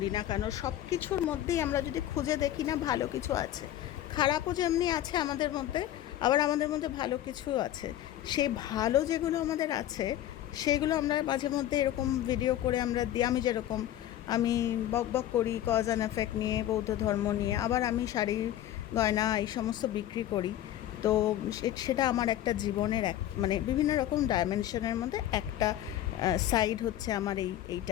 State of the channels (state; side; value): quieter; right; 12.5 dB